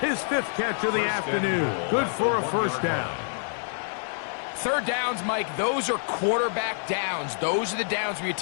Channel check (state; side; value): silent; right; 60 dB below the other